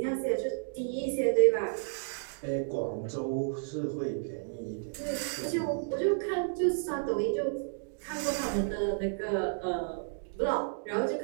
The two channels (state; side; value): silent; left; digital silence